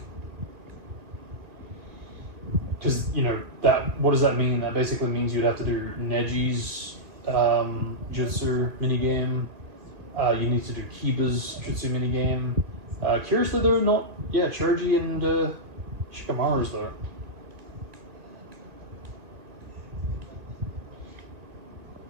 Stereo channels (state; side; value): late; left; 2.3 ms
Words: Because, you know, what does that mean? That basically means you'd have to do Neji's jutsu minigame. You need to do Kiba's jutsu minigame. Curiously, they're not... Yeah, Choji and Shikamaru's there.